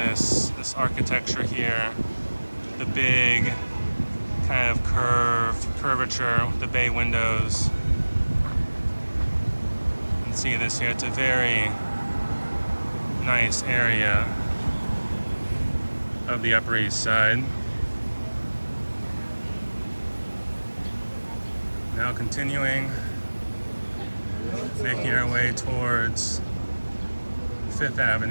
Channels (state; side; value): inverted; both; correlation -1.00